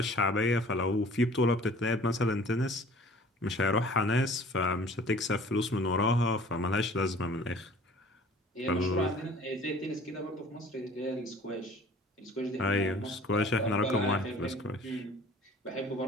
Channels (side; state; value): both; normal; correlation 0.49